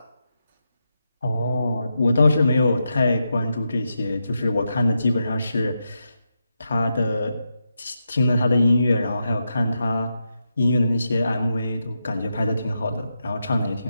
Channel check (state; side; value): inverted; both; correlation -0.86